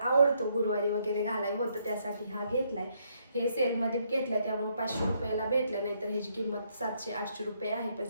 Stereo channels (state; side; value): inverted; both; correlation -0.73